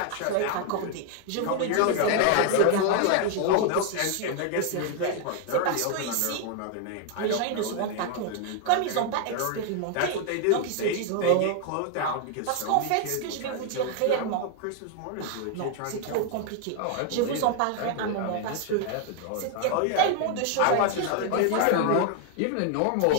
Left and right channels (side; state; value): both; different; correlation 0.00